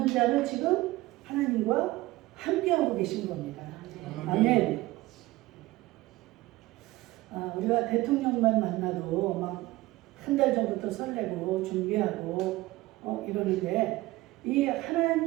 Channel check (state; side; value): quieter; left; 18.7 dB